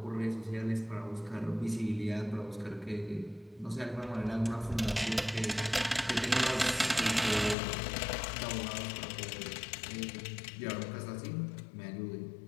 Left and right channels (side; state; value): right; drops out; at 7.6 s